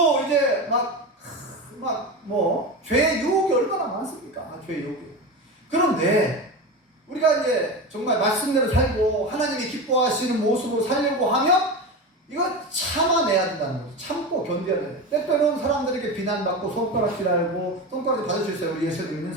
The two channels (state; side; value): normal; both; correlation 0.23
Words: 이제 죄의 유혹이 얼마나 많습니까? 죄의 유혹이. 그런데 우리가 이제 정말 말씀대로 살고 하나님이 기뻐하시는 모습으로 살려고 하면 이거 참아내야 된다는 거죠. 참고 견뎌야 돼. 때때로는 사람들에게 비난받고 손가락질하고 손가락질 받을 수 있어요. 우리 예수 믿는